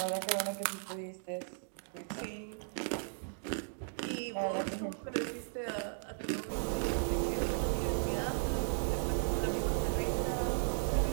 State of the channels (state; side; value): silent; left; digital silence